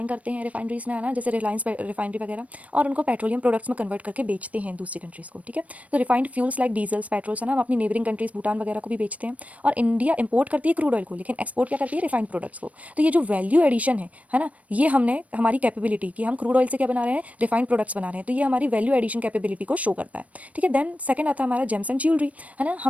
करते हैं रिफाइनरीज में, है ना, जैसे रिलायंस रिफाइनरी वगैरह, और उनको पेट्रोलियम प्रोडक्ट्स में कन्वर्ट करके बेचते हैं दूसरी कंट्रीज़ को, ठीक है। तो refined fuels like diesels, patrols, है ना, हम अपनी नेबरिंग कंट्रीज भूटान वगैरह को भी बेचते हैं। और इंडिया इंपोर्ट करती है क्रूड ऑयल को, लेकिन एक्सपोर्ट क्या करती है, रिफाइंड प्रोडक्ट्स को। तो ये जो वैल्यू एडिशन है ना, ये हमने हमारी कैपेबिलिटी कि हम क्रूड ऑयल से क्या बना रहे हैं, रिफाइंड प्रोडक्ट्स बना रहे हैं, तो ये हमारी वैल्यू एडिशन कैपेबिलिटी को शो करता है, ठीक है। देन सेकंड आता है हमारा जेम्स एंड ज्वेलरी, है ना।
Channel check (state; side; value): late; left; 0.068 ms